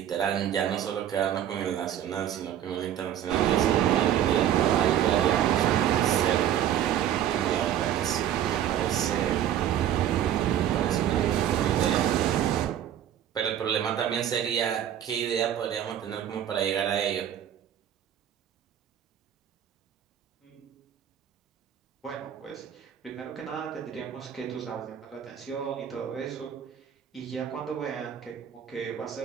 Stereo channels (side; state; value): left; quieter; 10.5 dB